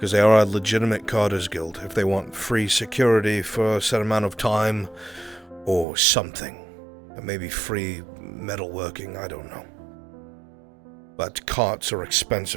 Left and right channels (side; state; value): left; drops out; at 5.9 s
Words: they are a legitimate Carters Guild. If they want free security for a set amount of time, or something. And maybe free metalworking, I don't know. But carts are